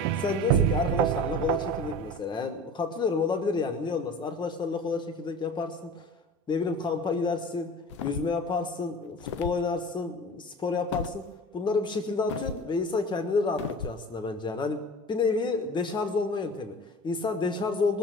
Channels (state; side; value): normal; both; correlation 0.38